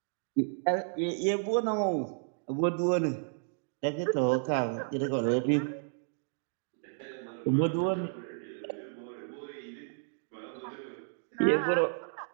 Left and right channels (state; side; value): silent; left; digital silence